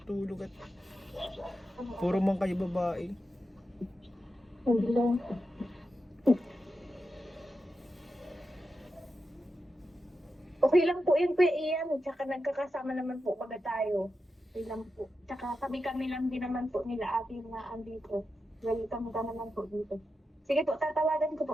tulog at puro man kayo babae. Hindi lang. Okay lang po yun, Kuya Ian. Tsaka nagkakasama naman po pagka tayo. Okay lang po. Tsaka kami-kami lang din naman po nila ate na andito. Welcome ka naman po dito. Sige po, tatawagan ko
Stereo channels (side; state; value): both; normal; correlation 0.89